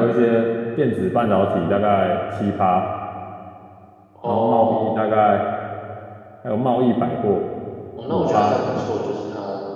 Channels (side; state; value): both; identical; correlation 1.00